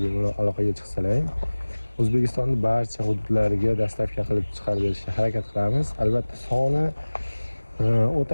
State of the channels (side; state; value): both; inverted; correlation -1.00